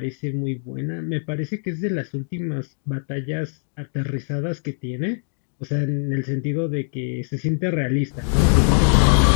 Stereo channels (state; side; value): silent; right; digital silence